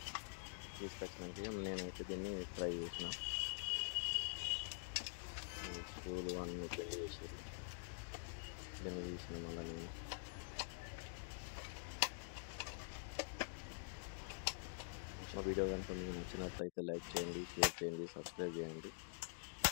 తీసుకొచ్చినాక నేనైతే దీన్ని ట్రై చేసిన. స్క్రూలు అన్నీ పెళ్లి చేసారు, దీన్ని తీసిన. మళ్ళీ నేను మా వీడియో కనుక మీకు నచ్చినట్లయితే లైక్ చేయండి, షేర్ చేయండి, సబ్స్క్రైబ్ చేయండి.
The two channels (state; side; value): silent; right; digital silence